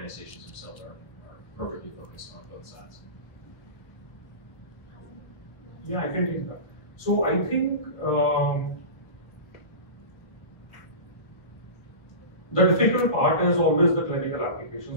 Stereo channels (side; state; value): right; late; 1.2 ms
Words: themselves are perfectly focused on both sides? Yeah, I can take that. So I think the difficult part is always the clinical